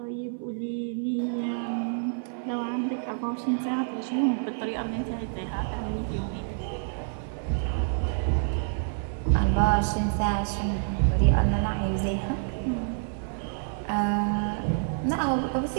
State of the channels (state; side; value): silent; left; 59 dB below the other